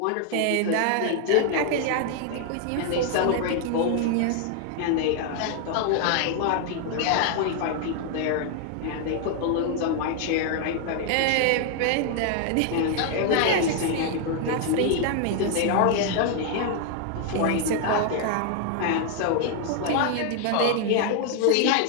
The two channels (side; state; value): both; different; correlation 0.00